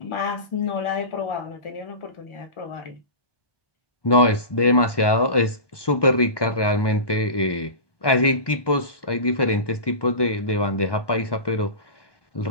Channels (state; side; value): late; right; 1.2 ms